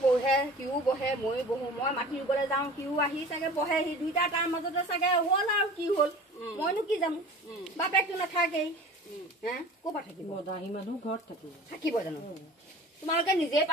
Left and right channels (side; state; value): both; normal; correlation 0.40